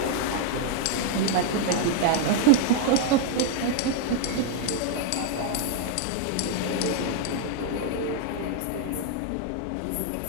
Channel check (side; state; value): both; different; correlation 0.00